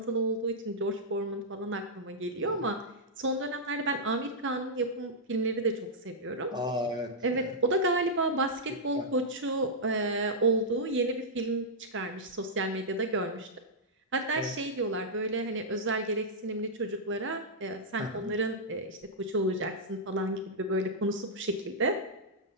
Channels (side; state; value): both; normal; correlation -0.09